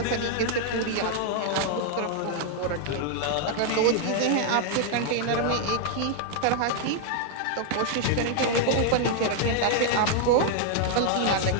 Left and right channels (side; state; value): both; different; correlation 0.00